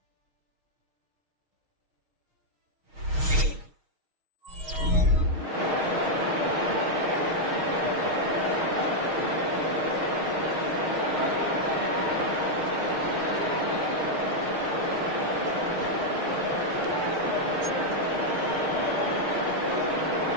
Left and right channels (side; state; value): left; late; 6.4 ms